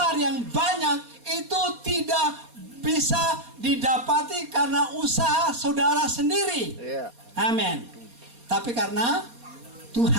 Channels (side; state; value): left; late; 4.2 ms